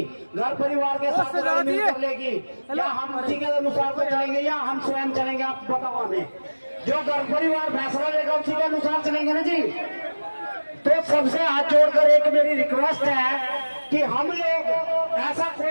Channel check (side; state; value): both; inverted; correlation -1.00